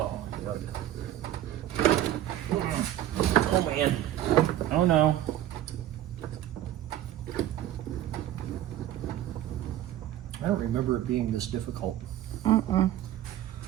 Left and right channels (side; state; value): left; quieter; 12.9 dB